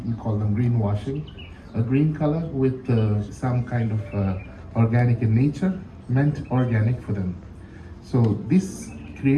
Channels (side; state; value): both; identical; correlation 1.00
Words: call them greenwashing. A green color with some kind of organic in nature meant organic for them. So this